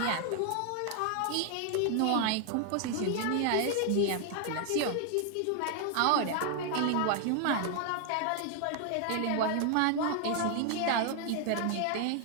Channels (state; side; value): different; both; correlation 0.00